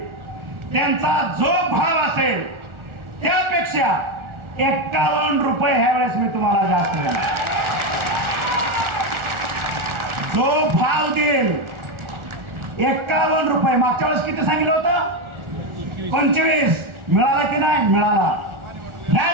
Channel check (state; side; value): late; left; 1.4 ms